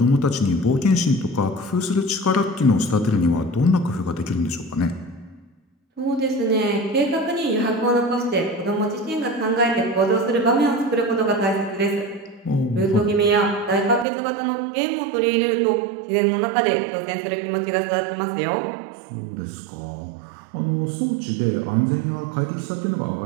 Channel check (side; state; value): left; drops out; at 14.1 s